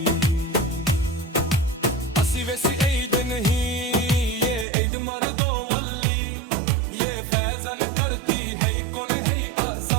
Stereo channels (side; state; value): left; drops out; at 4.7 s